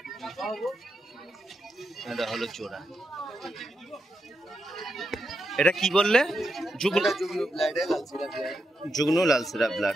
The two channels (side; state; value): both; normal; correlation 0.85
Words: এটা হলো জোড়া। এটা কি বললে? যুগ্ন যুগ্ন লালসিরা